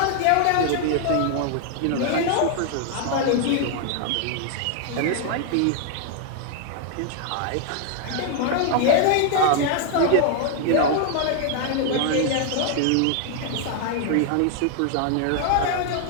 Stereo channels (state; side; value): different; both; correlation 0.00